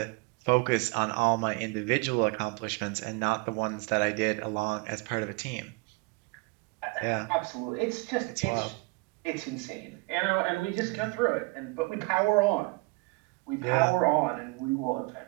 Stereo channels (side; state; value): left; quieter; 27.7 dB